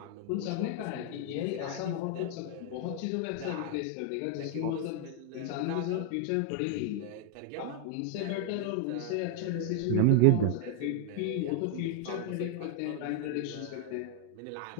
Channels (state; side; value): different; both; correlation 0.00